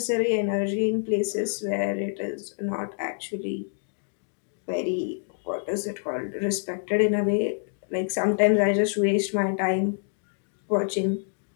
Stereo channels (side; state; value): right; silent; digital silence